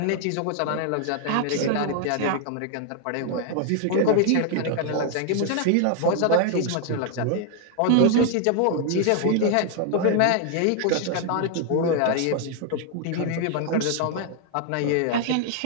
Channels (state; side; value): different; both; correlation 0.00